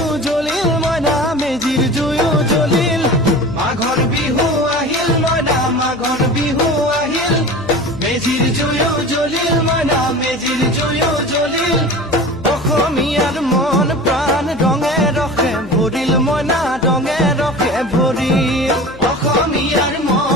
জ্বলিল মইনা মেজিৰ জুয়ো জ্বলিল মাঘৰ বিহু আহিল মইনা মাঘৰ বিহু আহিল মেজিৰ জুয়ো জ্বলিল মইনা মেজিৰ জুয়ো জ্বলিল অসমীয়াৰ মন প্ৰাণ ৰঙে ৰসে ভৰিল মইনা ৰঙে ৰসে ভৰিল অসমীয়াৰ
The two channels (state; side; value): noise; left; hum, 17 dB below the sound